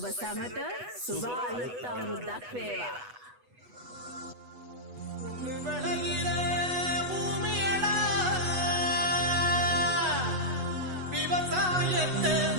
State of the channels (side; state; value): left; late; 8.1 ms